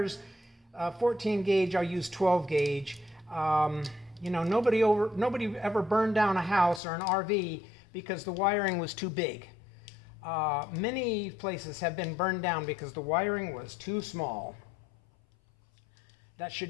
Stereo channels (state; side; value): drops out; right; at 6.8 s